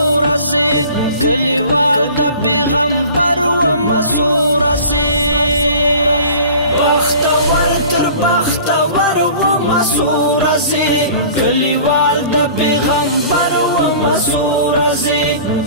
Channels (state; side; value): inverted; both; correlation -0.44